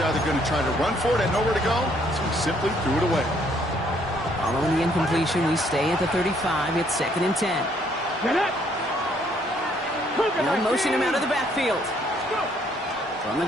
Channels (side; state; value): both; normal; correlation 0.66